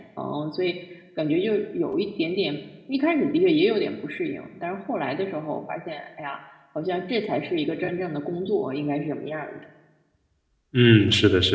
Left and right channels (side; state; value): both; identical; correlation 1.00